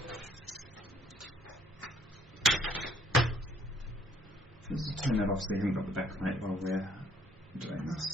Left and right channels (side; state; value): both; normal; correlation 0.63